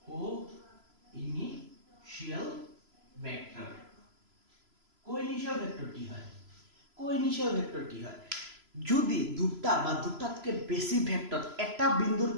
কো-ইনিশিয়াল ভেক্টৰ কো-ইনিশিয়াল ভেক্টৰ কি হয় কো-ইনিশিয়াল ভেক্টৰ কি হয় যদি দুটা বা দুটাতকে বেছি ভেক্টৰ এটা বিন্দুৰ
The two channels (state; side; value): late; left; 3.0 ms